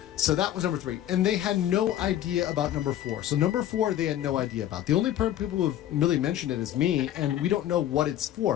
So that was number 3. And they had no idea about number 4. So number 4, they had no idea about. The only people who have really mentioned it is me, and we don't know what it's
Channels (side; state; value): right; quieter; 12.1 dB